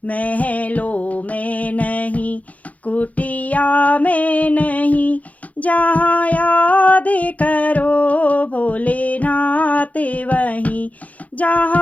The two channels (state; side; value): late; right; 0.071 ms